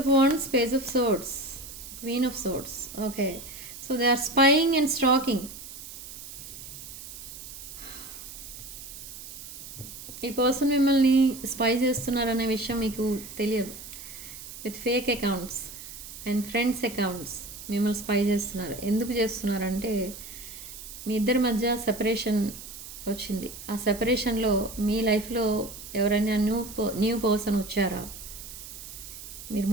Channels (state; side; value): noise; right; hiss, 13 dB below the sound